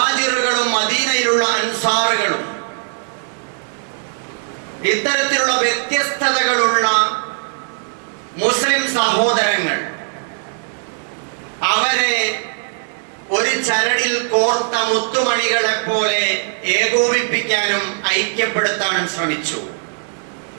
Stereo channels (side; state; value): left; silent; 64 dB below the other